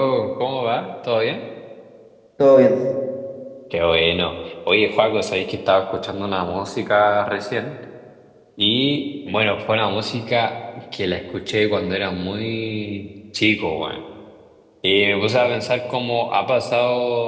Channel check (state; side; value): identical; both; correlation 1.00